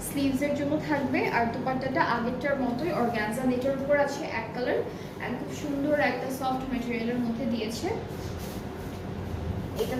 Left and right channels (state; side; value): identical; both; correlation 1.00